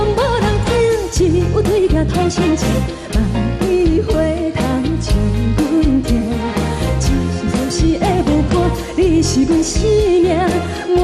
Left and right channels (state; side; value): identical; both; correlation 1.00